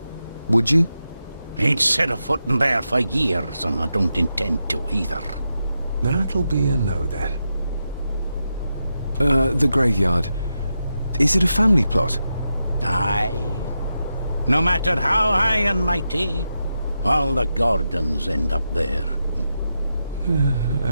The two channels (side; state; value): both; inverted; correlation -0.88